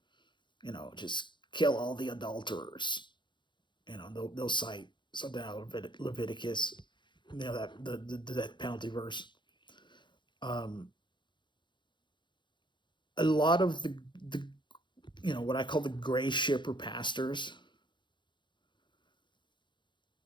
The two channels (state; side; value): late; right; 0.23 ms